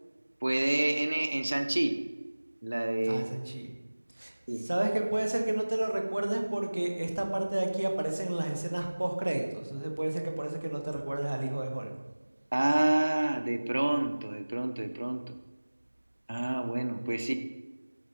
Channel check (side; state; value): both; inverted; correlation -1.00